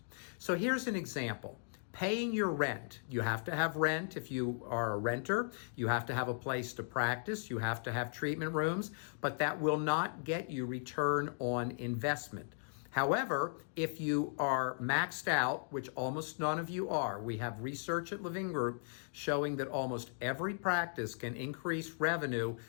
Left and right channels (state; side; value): silent; right; digital silence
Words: So here's an example. Paying your rent. You have to have rent if you are a renter. You have to have a place to practice. You have to have treatment rooms, but that will not get you return on investment. However, if you are maxed out, which almost none of you are, we have research at Levin Group showing that almost every practice can increase revenue